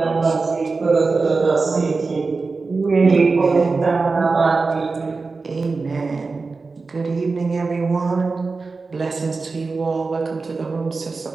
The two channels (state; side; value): quieter; left; 4.1 dB